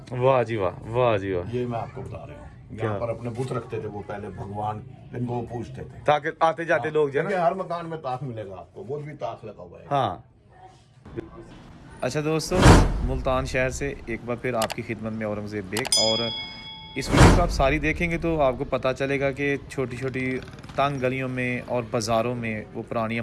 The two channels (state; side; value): identical; both; correlation 1.00